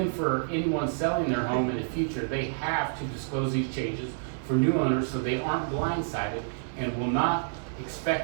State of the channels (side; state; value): left; silent; 59 dB below the other